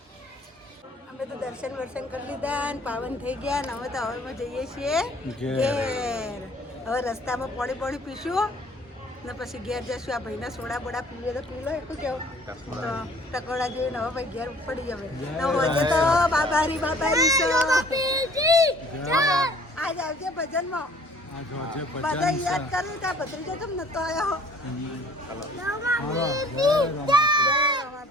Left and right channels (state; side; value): normal; both; correlation 0.54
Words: અમે તો દર્શન વર્શન કરી લીધા ને પાવન થઈ ગયા ને હવે તો હવેમાં જઈએ છીએ ઘેર. હવે રસ્તામાં પાણી પીશું ને પછી ઘેર જશું. આ ભાઈના સોડા બોડા પીવે તો પી લો. એટલું કેવું તો ટકોડા જોઈને હવે ભાઈ ઘેર પડી જવે તો હોજે તો બાબારી આજ આવજે ભજનમાં. બધા યાદ કર્યું ત્યાં ભત્રીજો કેમ નતો આવ્યો?